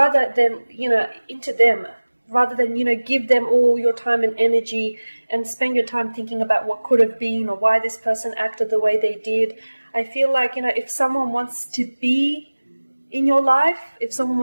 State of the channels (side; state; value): both; inverted; correlation -1.00